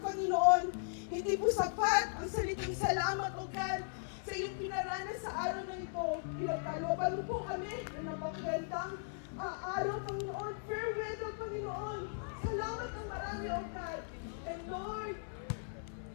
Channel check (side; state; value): right; silent; 53 dB below the other